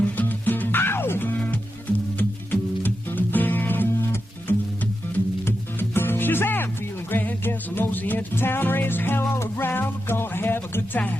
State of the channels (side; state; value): both; normal; correlation 0.89